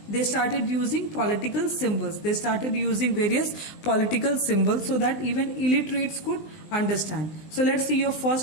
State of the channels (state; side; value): late; right; 20 ms